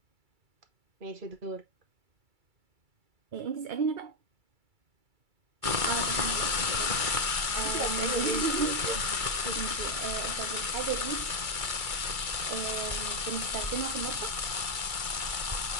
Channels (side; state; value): left; late; 2.3 ms